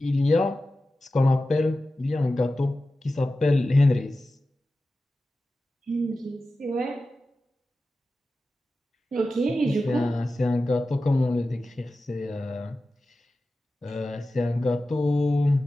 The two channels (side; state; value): both; normal; correlation 0.94